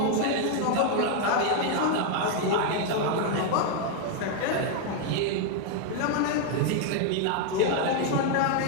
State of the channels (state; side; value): different; both; correlation 0.00